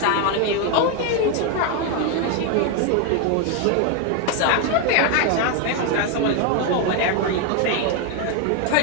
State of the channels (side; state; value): both; different; correlation 0.01